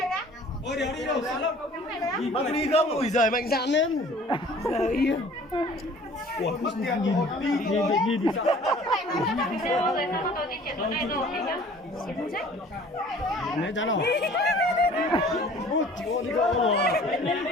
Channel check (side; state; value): both; normal; correlation 0.50